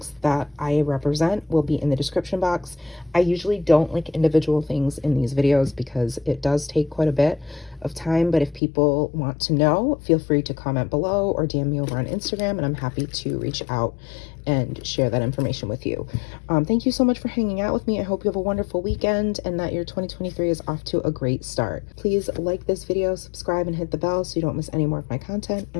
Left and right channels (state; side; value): drops out; right; at 8.6 s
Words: that I represent will be in the description box. I usually don't link individual things in these videos because it does take quite a bit of time, but if people want to know, feel free to comment below or DM me over on Instagram, and I'm happy to reach out and share that information with you. Thank you so much for hanging out with me. I hope you have a wonderful weekend and that your 2023 is off to a great start. Please like this video, subscribe, and hit the bell so you don't miss any more of my content,